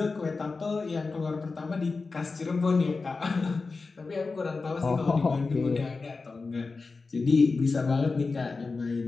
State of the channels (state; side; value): quieter; right; 4.1 dB